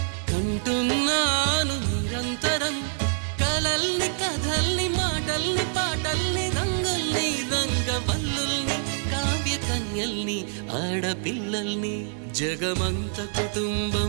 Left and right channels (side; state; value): left; silent; 61 dB below the other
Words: కంటున్నాను నిరంతరం కలల్ని కథల్ని మాటల్ని పాటల్ని రంగుల్ని రంగవల్లుల్ని కావ్య కన్యల్ని ఆడపిల్లల్ని జగమంత